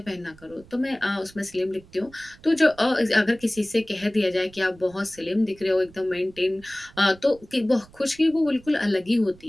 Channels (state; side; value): noise; right; rumble, 24 dB below the sound